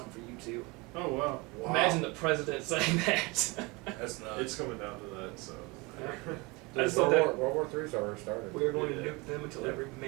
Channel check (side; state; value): left; quieter; 26.0 dB